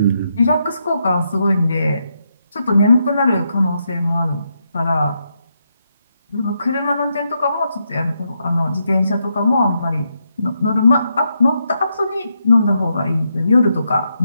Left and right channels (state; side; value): inverted; both; correlation -0.81